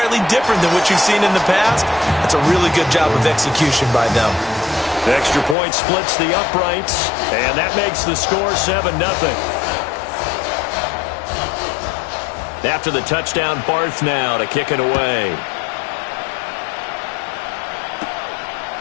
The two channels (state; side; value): drops out; right; at 5.6 s